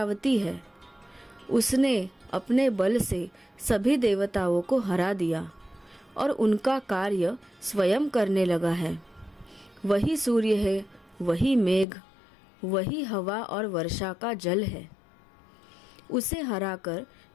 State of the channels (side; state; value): right; drops out; at 11.9 s